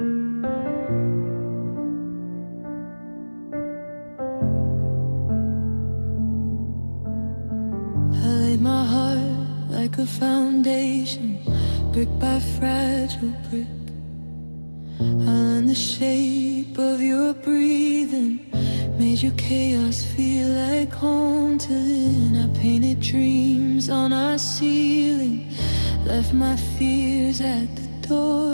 foundation, brick by fragile brick. I learned the shape of your breathing, made your chaos feel like home to then. I painted dreams on our ceiling, left my fears at the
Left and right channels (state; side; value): inverted; both; correlation -1.00